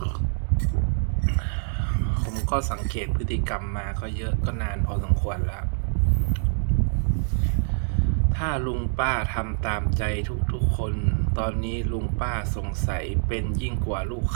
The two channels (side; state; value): left; silent; digital silence